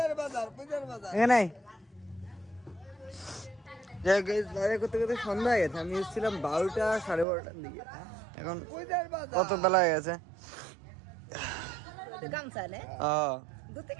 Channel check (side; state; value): left; drops out; at 7.2 s